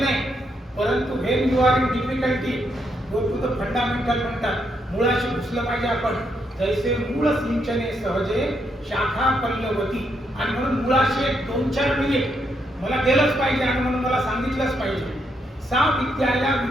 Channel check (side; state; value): both; normal; correlation 0.78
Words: नाही, परंतु when you are in difficulty go to the fundamental म्हणतात. मुळाशी घुसलं पाहिजे आपण. जैसे मूळ सिंचने सहजे शाखा पल्लवती. आणि म्हणून मुळाशी 2-4 मिनिट मला गेलंच पाहिजे आणि म्हणून मला सांगितलंच पाहिजे. सा विद्याया